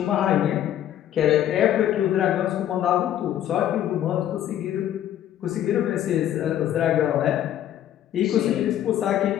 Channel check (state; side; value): quieter; right; 11.4 dB